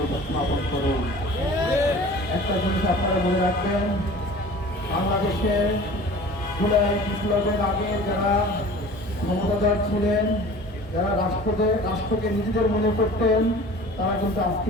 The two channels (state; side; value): normal; both; correlation 0.43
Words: উপস্থাপন করুন। একটা জিনিস আপনারা মনে রাখবেন, বাংলাদেশে জুলাই বিপ্লবের আগে যারা ক্ষমতাধর ছিলেন, যারা রাষ্ট্রকে নিজেদের মনে করতেন, তারা কিন্তু